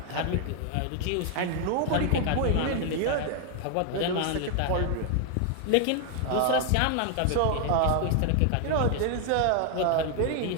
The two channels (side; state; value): both; different; correlation 0.00